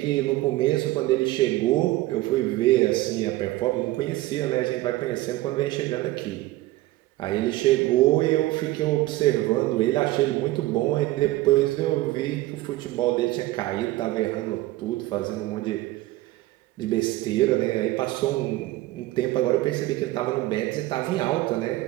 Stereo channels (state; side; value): quieter; left; 17.6 dB